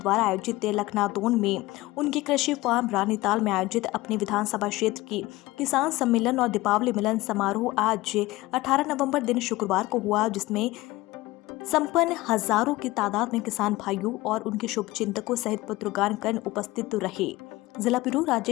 आयोजित लखनादौन में उनके कृषि फार्म रानीताल में आयोजित अपने विधानसभा क्षेत्र की किसान सम्मेलन और दीपावली मिलन समारोह आज 18 नवंबर दिन शुक्रवार को हुआ, जिसमें संपन्न हजारों की तादाद में किसान भाइयों और उनके शुभचिंतकों सहित पत्रकारगण उपस्थित रहे। जिला ब्यूरो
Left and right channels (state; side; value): quieter; right; 19.1 dB